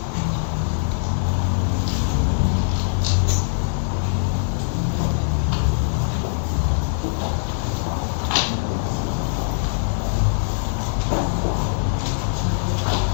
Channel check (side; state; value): right; silent; digital silence